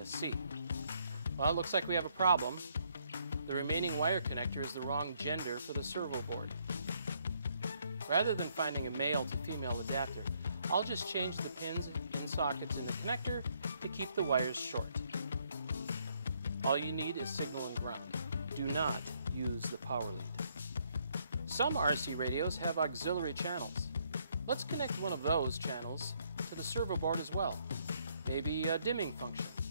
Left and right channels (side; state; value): both; inverted; correlation -0.71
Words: Well, it looks like we have a problem. The remaining wire connector is the wrong gender for the servo board. Rather than finding a male to female adapter, I'll just change the pins in sockets in the connector to keep the wires short. All you need is signal and ground. Do not use the power lead. Some RC radios have auxiliary channels. Let's connect one of those channels to the servo board as well. Maybe a dimming function.